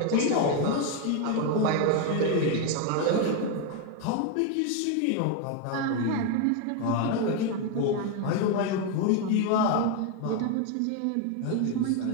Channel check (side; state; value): both; different; correlation 0.01